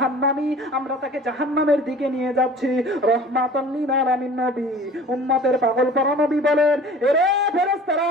আমরা তাকে জাহান্নামের দিকে নিয়ে যাচ্ছি। রহমাতুল লিল আলামিন নবী, উম্মতের পাগল পারা নবী বলেন, এরে ফেরেশতারা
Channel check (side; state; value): both; normal; correlation 0.45